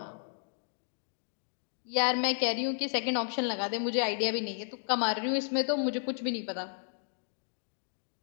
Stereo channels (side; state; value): right; silent; 56 dB below the other